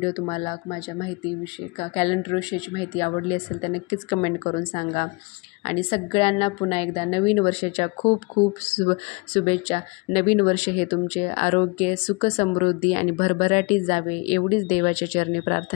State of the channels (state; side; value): quieter; right; 28.5 dB